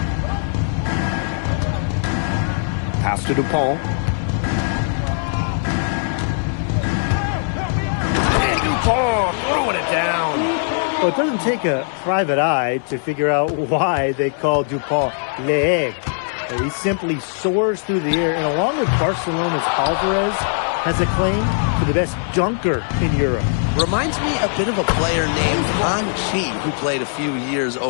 Pass to Dupont. And Dupont throwing it down. Well, it doesn't take a private eye to figure out why they call Dupont l'aigle. He simply soars through the air, and along with Barcelona's Alvarez, has a claim to the best dunker in Europe. Reminds me a bit of a player named Han Chi, who played a few years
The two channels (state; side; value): silent; right; 60 dB below the other